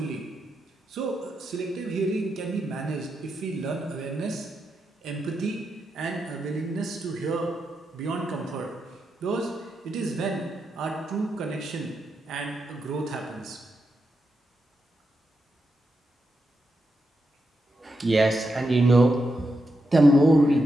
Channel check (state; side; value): normal; both; correlation 0.85